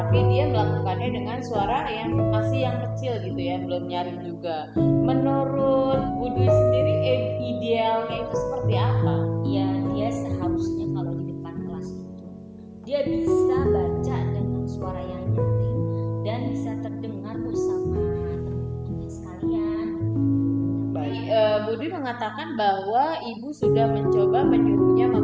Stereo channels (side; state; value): both; identical; correlation 1.00